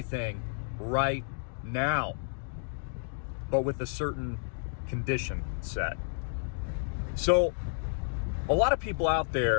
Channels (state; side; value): silent; right; digital silence